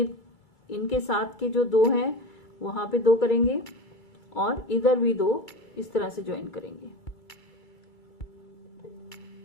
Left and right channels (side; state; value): right; late; 2.3 ms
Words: इनके साथ के जो 2 हैं वहां पे 2 करेंगे और इधर भी 2 इस तरह से ज्वाइन करेंगे